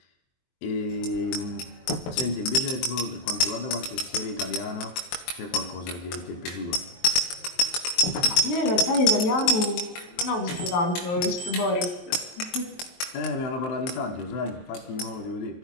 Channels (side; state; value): right; late; 22 ms